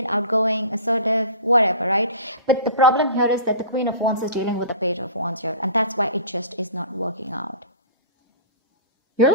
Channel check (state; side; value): inverted; both; correlation -0.39